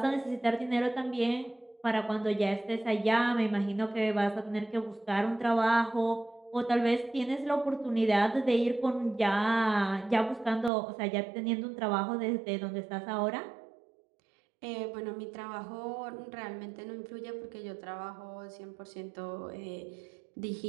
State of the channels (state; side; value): drops out; left; at 10.7 s